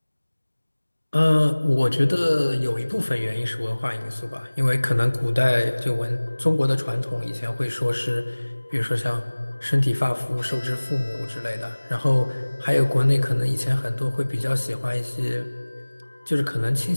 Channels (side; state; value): both; inverted; correlation -1.00